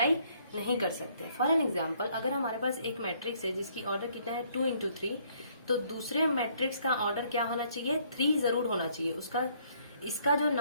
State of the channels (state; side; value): inverted; both; correlation -0.65